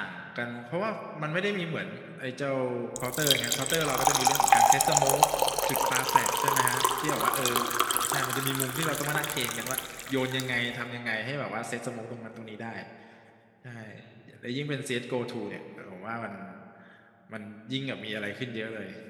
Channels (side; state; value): both; identical; correlation 1.00